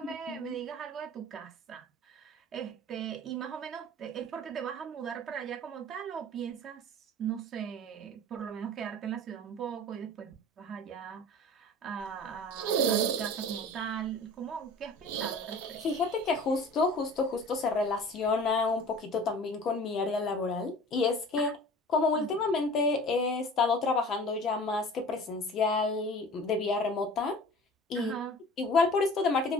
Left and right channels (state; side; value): normal; both; correlation 0.42